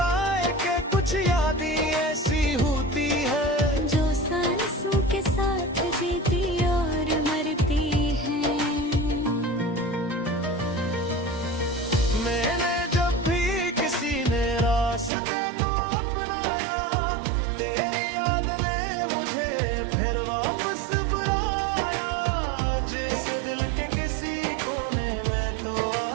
कि कुछ यादें ऐसी होती है जो सांसों के साथ जीती और मरती है। मैंने जब भी किसी ने रास्ते को अपनाया, तेरी याद ने मुझे फिर वापस बुलाया। जैसे दिल के किसी कोने में तो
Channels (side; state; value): left; drops out; at 15.1 s